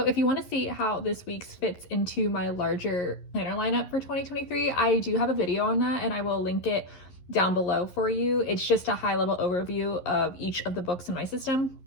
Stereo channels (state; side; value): late; right; 11 ms